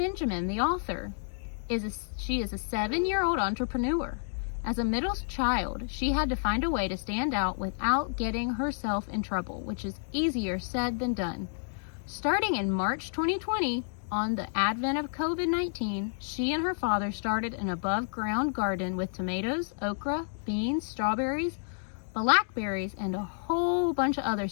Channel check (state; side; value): silent; right; digital silence